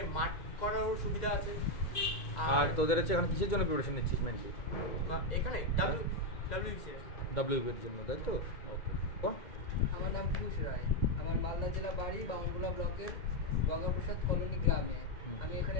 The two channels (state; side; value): late; right; 2.2 ms